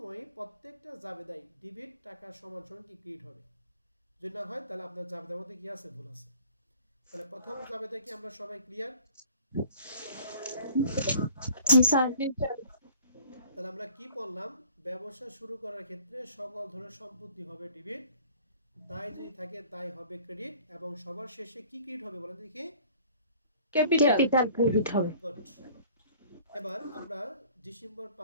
প্রত্যেকটা জাবেদাই ডেবিট টাকা সমান সমান কি ক্রেডিট হবে। যদি না হয় তাহলে আপনার জাবেদার মধ্যে কি আছে, ভুল আছে। তাহলে প্রথম জাবেদা কি আমরা সবাই ক্লিয়ার? জি স্যার। জি স্যার। তাহলে আমরা কি বললাম? ব্যবসা শুরু করার ক্ষেত্রে সকল ধরনের সম্পত্তি হবে ডেবিট, দায় যদি থাকে দায় হবে ক্রেডিট, এবং সবার শেষে কি ক্রেডিট হবে বলেন দেখি? ক্যাপিটাল। ক্যাপিটাল ক্রেডিট হবে। গুড। এবার আমরা ডিসেম্বর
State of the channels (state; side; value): inverted; both; correlation -0.51